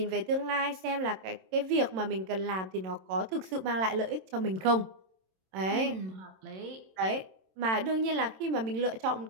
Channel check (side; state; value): left; late; 27 ms